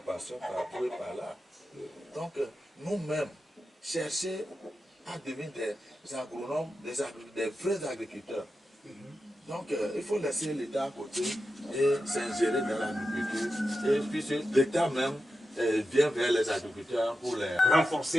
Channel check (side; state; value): both; normal; correlation 0.91